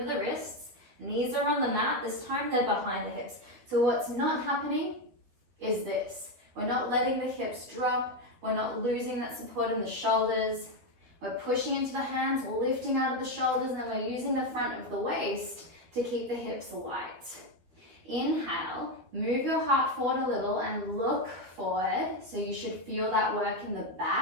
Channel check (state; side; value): late; left; 13 ms